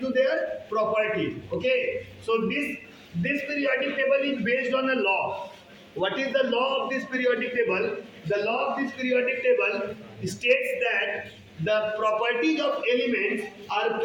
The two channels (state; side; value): identical; both; correlation 1.00